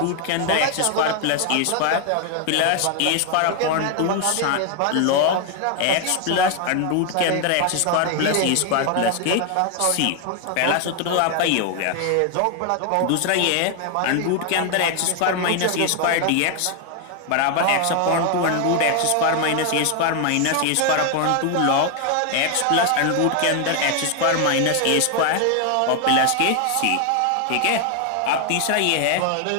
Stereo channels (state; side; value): different; both; correlation 0.01